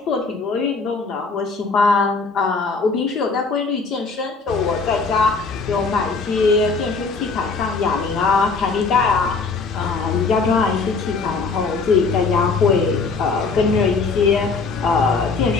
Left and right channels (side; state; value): right; quieter; 4.4 dB